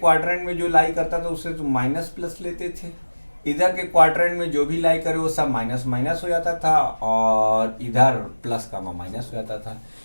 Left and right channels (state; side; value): inverted; both; correlation -1.00